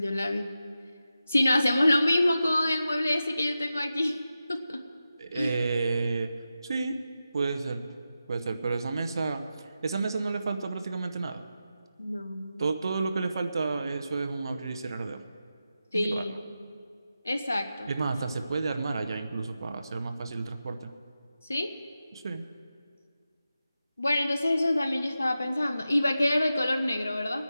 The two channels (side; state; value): both; inverted; correlation -0.91